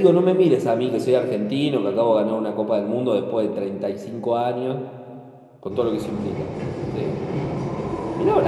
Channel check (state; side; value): identical; both; correlation 1.00